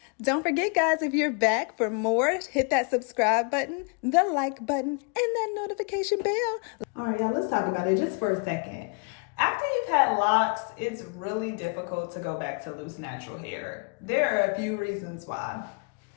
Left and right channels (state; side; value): quieter; right; 37.4 dB